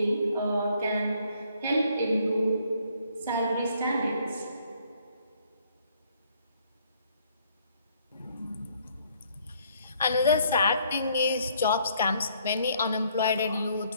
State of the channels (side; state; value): both; inverted; correlation -0.65